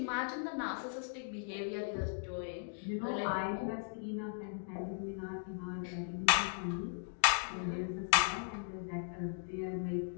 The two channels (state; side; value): silent; right; digital silence